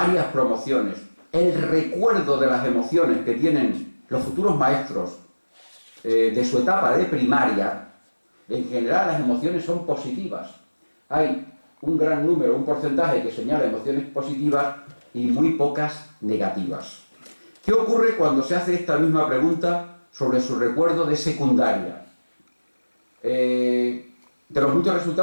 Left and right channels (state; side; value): inverted; both; correlation -1.00